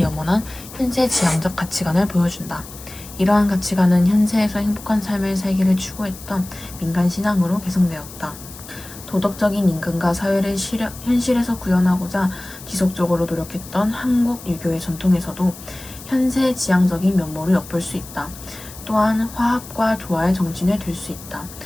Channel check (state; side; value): noise; left; hiss, 16 dB below the sound